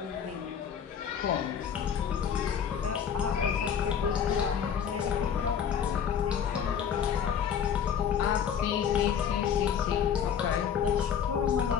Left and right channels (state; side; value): quieter; right; 8.0 dB